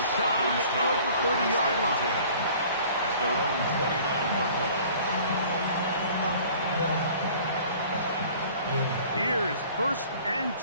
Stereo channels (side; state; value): both; inverted; correlation -0.50